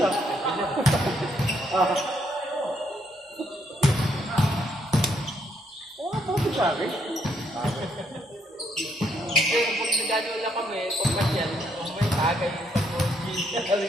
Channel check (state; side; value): normal; both; correlation 0.73